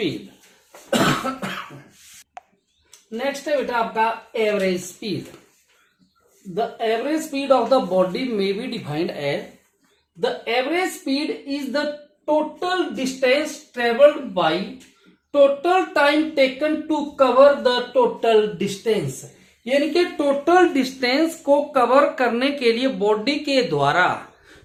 नेक्स्ट है बेटा आपका average speed. The average speed of the body may be defined as, the average speed is the total distance travelled by total time taken to cover the total distance. यानी कि total distance को cover करने के लिए body के द्वारा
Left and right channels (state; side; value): identical; both; correlation 1.00